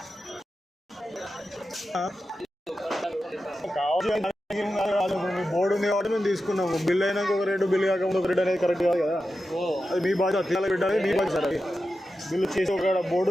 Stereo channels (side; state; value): both; normal; correlation 0.91